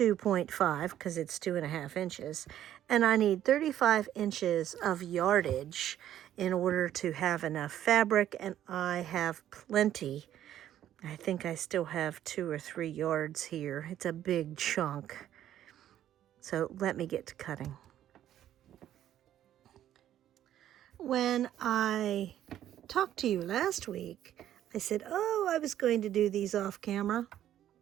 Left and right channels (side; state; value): left; quieter; 11.6 dB